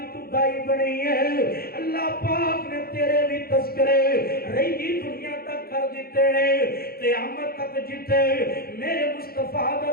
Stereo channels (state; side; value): late; right; 0.44 ms